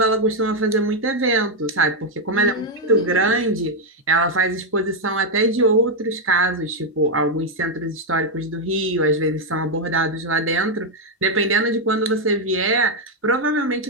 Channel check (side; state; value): both; normal; correlation 0.02